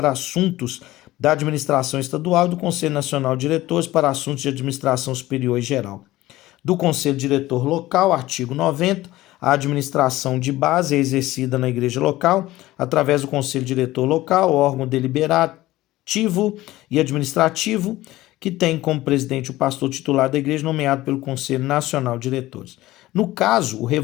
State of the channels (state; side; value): quieter; right; 16.9 dB